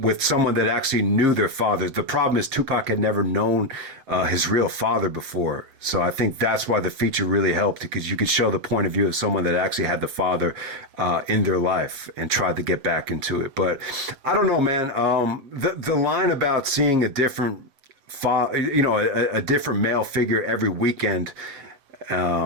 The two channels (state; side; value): late; left; 7.8 ms